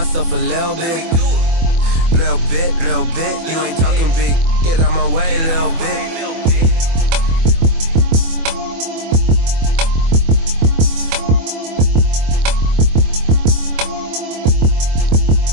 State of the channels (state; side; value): late; left; 24 ms